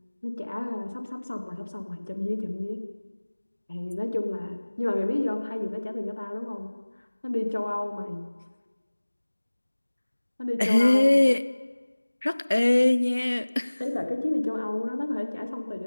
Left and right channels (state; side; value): inverted; both; correlation -1.00